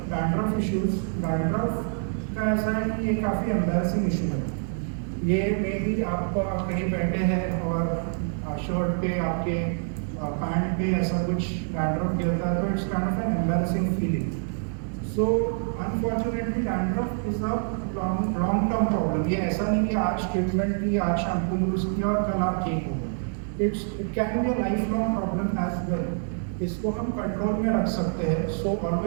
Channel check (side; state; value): left; silent; 61 dB below the other